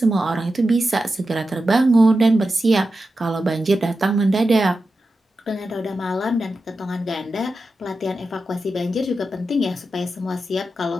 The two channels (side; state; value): both; normal; correlation 0.91